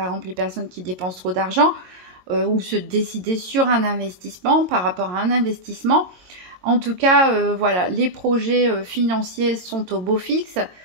exemple, les personnes qui dépensent trop d'argent, ou se décider sur un investissement par rapport à un investissement. En tout cas, voilà, les projets financiers sont au beau fixe.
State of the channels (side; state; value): left; late; 22 ms